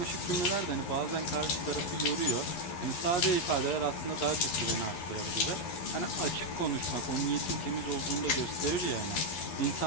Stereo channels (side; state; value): right; late; 12 ms